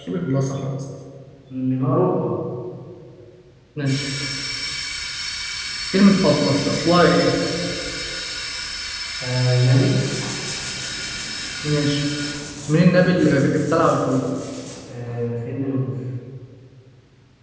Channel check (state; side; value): identical; both; correlation 1.00